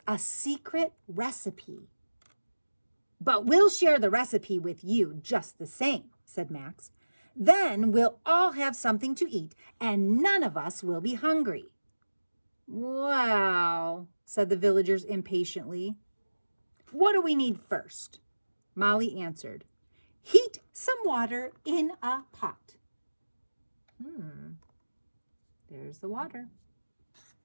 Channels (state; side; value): inverted; both; correlation -1.00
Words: a secret recipe." "But we'll share the recipe with you just the same," said Max. "Then we'll all have something to eat, and none of us will be hungry." "Well," said the villagers impatiently. "What do we need first?" Molly answered. "Heat some water in a pot." There's the water.